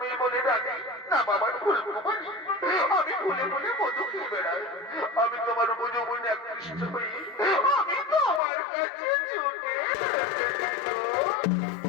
এই বলে রানী, না বাবার ফুল কুমারী। আমি ফুলে ফুলে মধু খেয়ে বেড়াই। আমি তোমার উপযৌবনে আকৃষ্ট হই, আমি তোমার কাছে ছুটে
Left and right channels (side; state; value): right; drops out; at 8.4 s